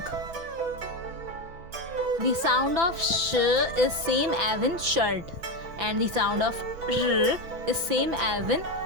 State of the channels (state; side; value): late; left; 6.0 ms